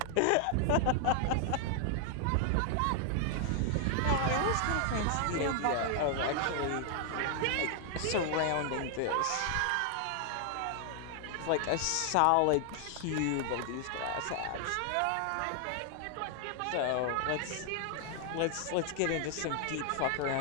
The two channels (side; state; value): both; different; correlation 0.00